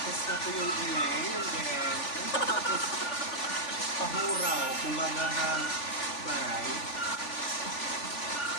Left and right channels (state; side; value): late; right; 3.5 ms